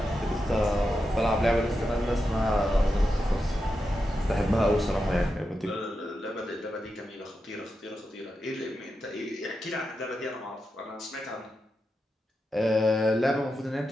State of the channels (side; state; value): both; normal; correlation 0.88